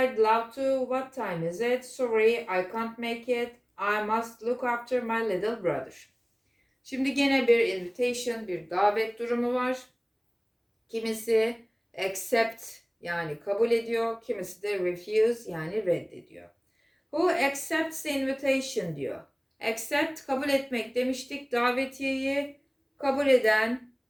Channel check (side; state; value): both; identical; correlation 1.00